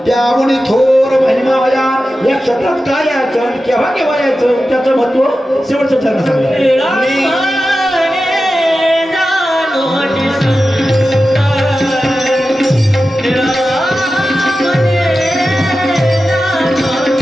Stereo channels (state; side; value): normal; both; correlation 0.93